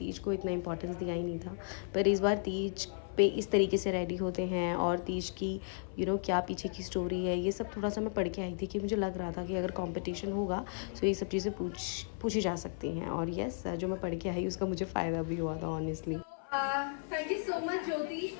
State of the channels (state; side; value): silent; right; 55 dB below the other